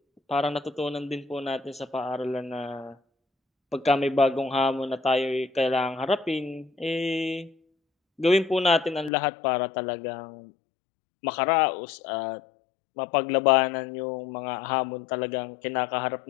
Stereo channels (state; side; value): drops out; right; at 9.1 s